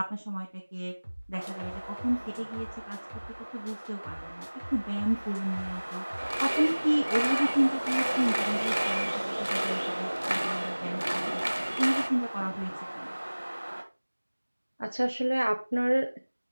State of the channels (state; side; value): inverted; both; correlation -1.00